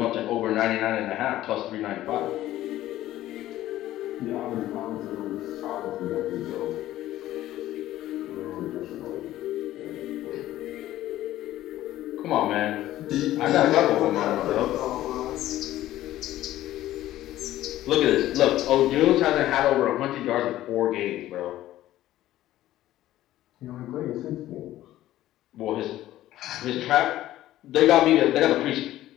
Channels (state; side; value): quieter; right; 14.3 dB